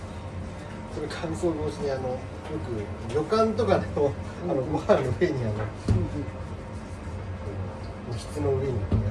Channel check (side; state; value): both; identical; correlation 1.00